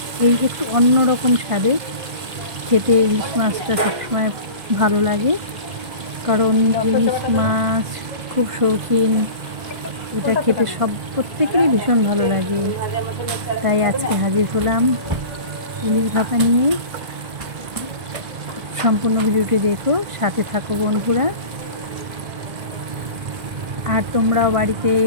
এই একটু অন্যরকম স্বাদে খেতে ইলিশ মাছটা সবসময় ভালো লাগে, কারণ ইলিশ মাছ খুব শৌখিন, এটা খেতে প্রত্যেকেরই ভীষণ ভালো লাগে। তাই আজকে হাজির হলাম ইলিশ ভাপা নিয়ে। সম্পূর্ণ ভিডিওটি দেখো, সাথে থাকো বন্ধুরা। আর তোমরাও বাড়িতে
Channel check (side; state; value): left; late; 1.5 ms